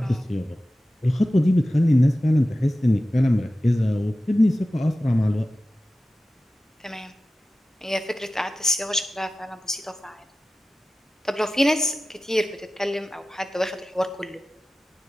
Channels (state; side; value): normal; both; correlation 0.95